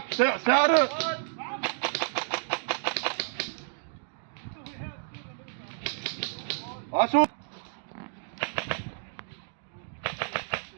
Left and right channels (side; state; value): left; silent; digital silence